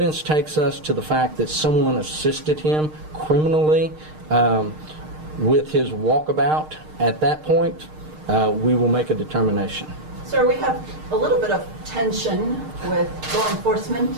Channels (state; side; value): late; left; 6.5 ms